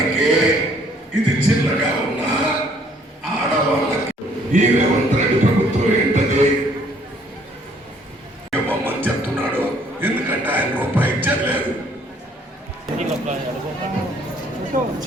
ఇది చిన్నగా ఉన్న ఆడవాళ్ళకి ఈ రేవంత్ రెడ్డి ప్రభుత్వం ఏంటది ఇవ్వమని చెప్తున్నాడు. ఎందుకంటే ఆయన రూపాయి ఇచ్చలేదు.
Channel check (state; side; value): normal; both; correlation 0.62